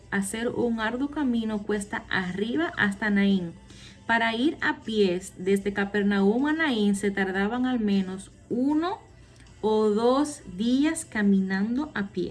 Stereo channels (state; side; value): identical; both; correlation 1.00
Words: hacer un arduo camino cuesta arriba hasta Naín. Para ir a pies desde Capernaum a Naín se tardaban al menos 1 o 2 días caminando a